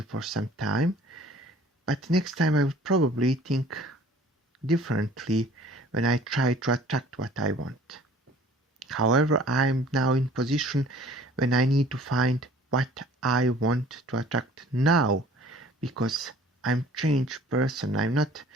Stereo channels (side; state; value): both; normal; correlation 0.51